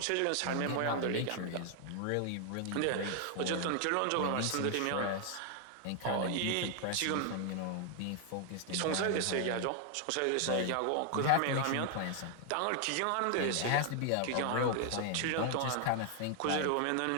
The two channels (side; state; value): both; different; correlation 0.00